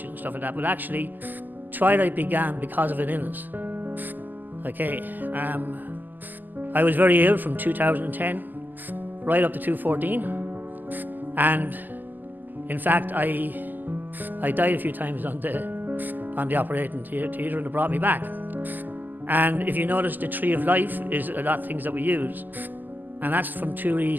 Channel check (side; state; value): left; late; 0.086 ms